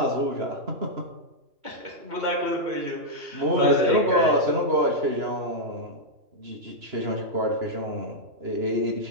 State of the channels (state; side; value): late; left; 2.9 ms